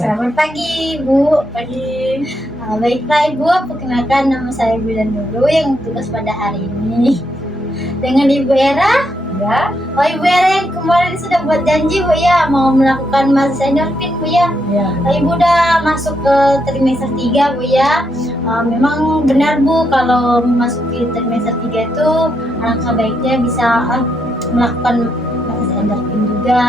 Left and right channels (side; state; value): both; normal; correlation 0.79